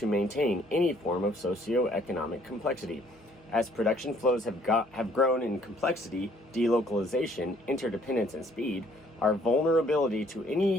maintain any form of socio-economic complexity. As production flows have grown in complexity, delocalization, interdependence, and speed, our vulnerability to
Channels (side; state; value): both; normal; correlation 0.62